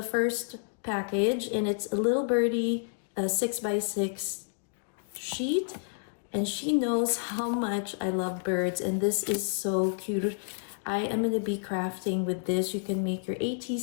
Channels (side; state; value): right; silent; digital silence